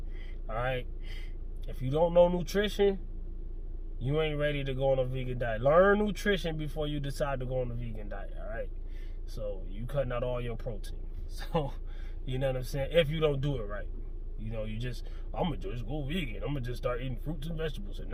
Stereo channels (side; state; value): both; identical; correlation 1.00